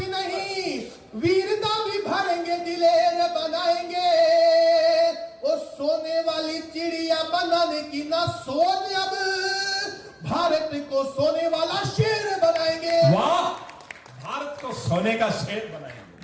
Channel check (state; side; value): identical; both; correlation 1.00